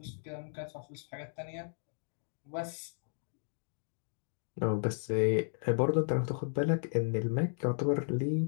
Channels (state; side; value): silent; right; digital silence